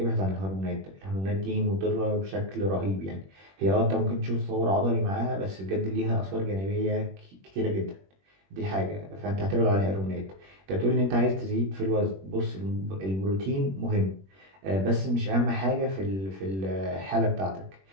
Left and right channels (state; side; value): late; left; 21 ms